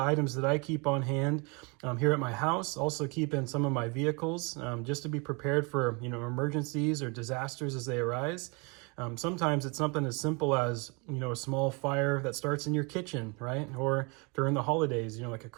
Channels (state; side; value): quieter; left; 30.7 dB